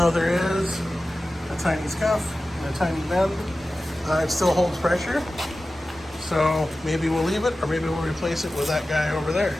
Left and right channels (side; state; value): both; normal; correlation 0.95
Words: there is a tiny scuff and a tiny bend, it still holds pressure. So maybe we'll leave it, or maybe we'll replace it with that guy over there.